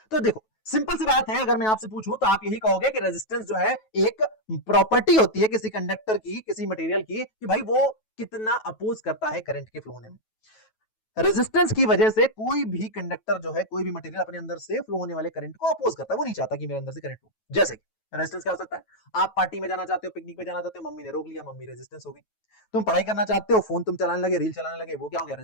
तो देखो सिंपल सी बात है, अगर मैं आपसे पूछूं तो आप यही कहोगे कि रेजिस्टेंस जो है एक प्रॉपर्टी होती है किसी कंडक्टर की, किसी मटेरियल की, कि भाई वो कितना अपोज करता है करंट के फ्लो होने में। रेजिस्टेंस की वजह से कोई भी कंडक्टर जो है, कोई भी मटेरियल अपने अंदर से फ्लो होने वाले करंट को अपोज करता है, वो नहीं चाहता कि मेरे अंदर से करंट फ्लो। जैसे रेजिस्टेंस क्या हो सकता है, आप पार्टी में जाना चाहते हो, पिकनिक पे जाना चाहते हो, मम्मी ने रोक लिया, मम्मी रेजिस्टेंस हो गई। तुम पढ़ाई करना चाहते हो, फोन तुम चलाने लगे, रील चलाने लगे, वो क्या हो गया,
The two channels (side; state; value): right; late; 9.2 ms